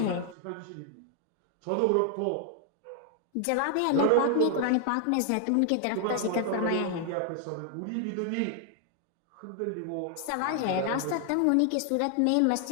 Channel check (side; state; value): both; different; correlation 0.00